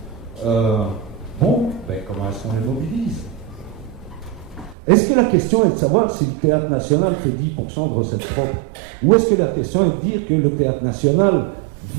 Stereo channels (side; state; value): left; drops out; at 4.8 s